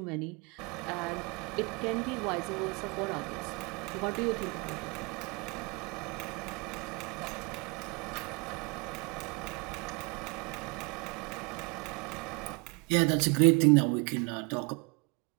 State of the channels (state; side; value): quieter; left; 30.3 dB